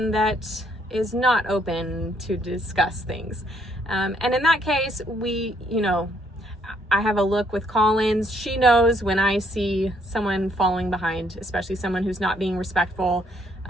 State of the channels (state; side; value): normal; both; correlation 0.69